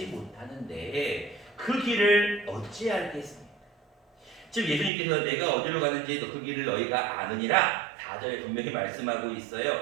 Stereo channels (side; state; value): left; drops out; at 4.9 s